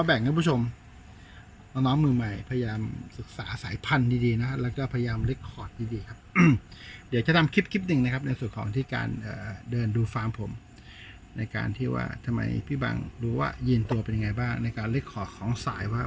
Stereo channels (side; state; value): both; identical; correlation 1.00